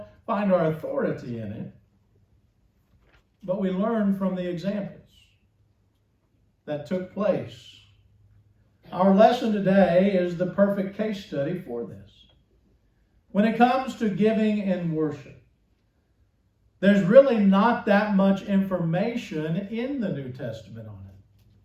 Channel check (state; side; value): identical; both; correlation 1.00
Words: find our authority in it, but we learn from the examples that took place. Our lesson today is the perfect case study for this. When it comes to giving and worship, there's really not that much information in the New Testament on it.